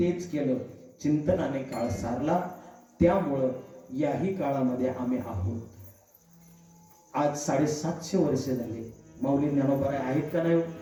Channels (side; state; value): both; identical; correlation 1.00